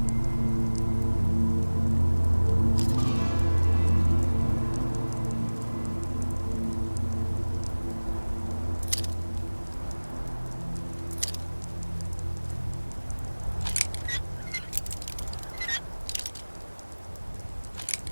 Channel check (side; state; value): both; inverted; correlation -1.00